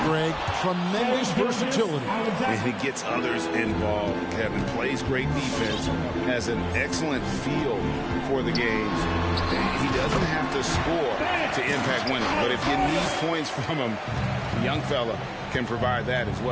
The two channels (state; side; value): identical; both; correlation 1.00